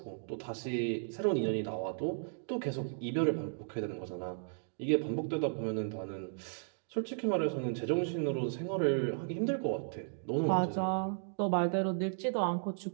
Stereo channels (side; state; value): left; silent; digital silence